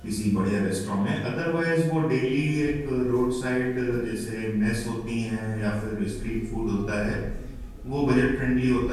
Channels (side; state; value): both; identical; correlation 1.00